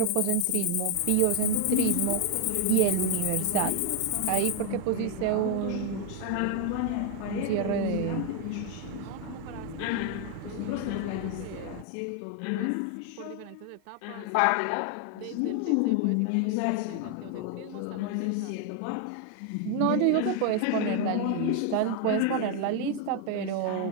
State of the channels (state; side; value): different; both; correlation 0.01